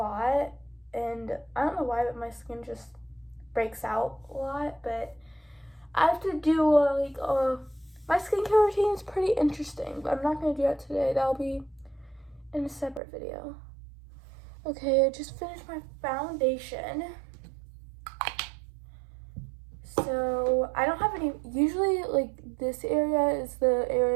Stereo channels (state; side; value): drops out; left; at 13.0 s